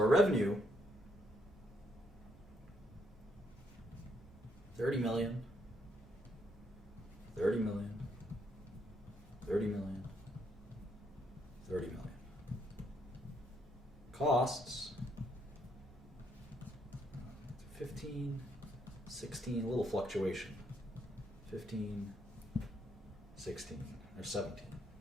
revenue, 30 million, 30 million, 30 million, 30 million. Costs, 15, 16, a little fluctuation. 15, 16, or 17.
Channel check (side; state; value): both; normal; correlation 0.74